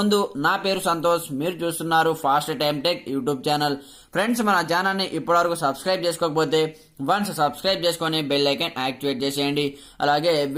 నా పేరు సంతోష్, మీరు చూస్తున్నారు fast time tech YouTube channel. Friends, మన ఛానల్ని ఇప్పటివరకు సబ్స్క్రైబ్ చేసుకోకపోతే వన్స్ సబ్స్క్రైబ్ చేసుకొని బెల్ ఐకాన్ యాక్టివేట్ చేసేయండి. అలాగే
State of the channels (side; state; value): both; identical; correlation 1.00